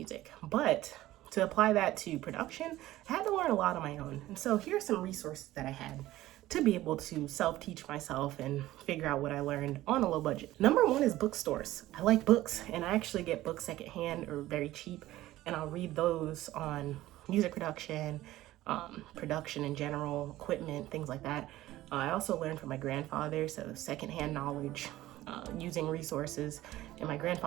But to apply that to production, I had to learn a lot on my own. And so here are some resources that I had to be able to self-teach myself and figure out what I learned on a low budget. Number one is bookstores. I like books, and I actually get books secondhand or very cheap, and I'll read those on music production, production in general, equipment, things like that. I also learned from my grandfather, so secondhand knowledge, using resources. And my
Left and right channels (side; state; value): left; quieter; 15.8 dB